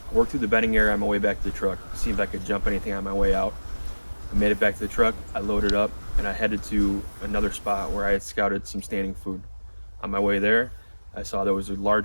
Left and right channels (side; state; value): both; inverted; correlation -1.00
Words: I worked through the bedding area on my way back to the truck, see if I could jump anything on my way out. I made it back to the truck, I loaded up, and I headed to another spot where I had scouted some standing food. On my way there, I saw there was a